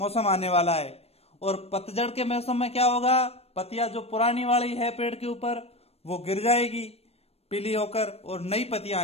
आने वाला है। और पतझड़ के मौसम में क्या होगा? पत्तियां जो पुरानी वाली है पेड़ के ऊपर वो गिर जाएगी पीली होकर और नई पत्तियां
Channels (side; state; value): right; late; 0.29 ms